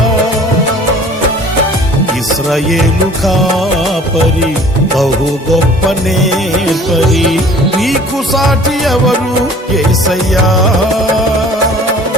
ఇశ్రాయేలు కాపరి బహు గొప్ప నేర్పరి, నీకు సాటి ఎవరు యేసయ్యా.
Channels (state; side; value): normal; both; correlation 0.49